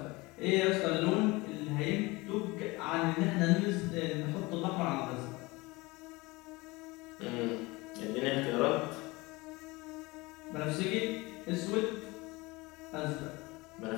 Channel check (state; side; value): quieter; right; 23.0 dB